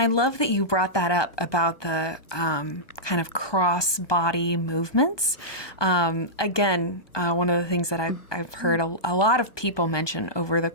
I love that you brought that up about the kind of cross-body movements. Again, one of the things that I've heard a lot of people mention over the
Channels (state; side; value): late; right; 1.2 ms